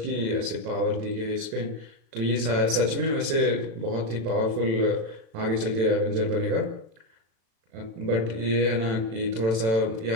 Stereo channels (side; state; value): left; late; 36 ms